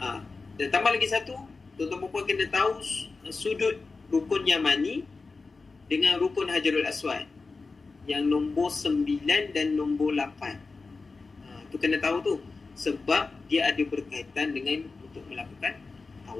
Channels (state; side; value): quieter; right; 4.0 dB